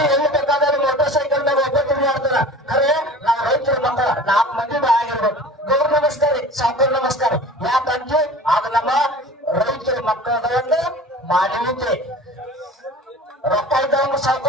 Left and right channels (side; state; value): both; normal; correlation 0.40